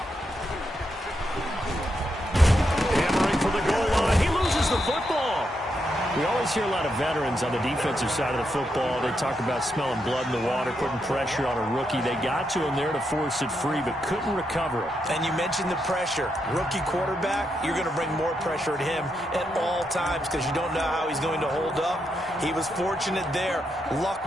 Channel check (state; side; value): normal; both; correlation 0.82